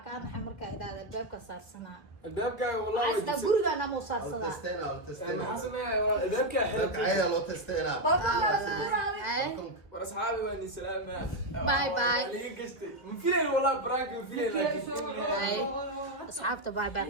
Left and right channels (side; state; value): right; late; 1.8 ms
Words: ka naxay marka idaada albaabka saarsanaa الباب والله asda gurigana ma saarsadaa الباب عيا لو تستيلا واصحابي واني سلام باي باي من فين والله براك من فين اصحابته باي باي